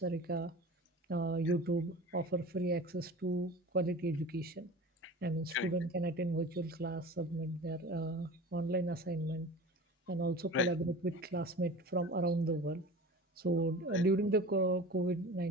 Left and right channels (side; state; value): both; normal; correlation 0.37